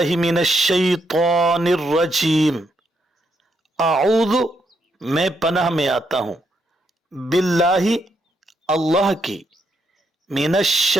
من الشیطان الرجیم، اعوذ میں پناہ میں آتا ہوں، باللہ اللہ کی، من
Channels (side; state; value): both; normal; correlation 0.77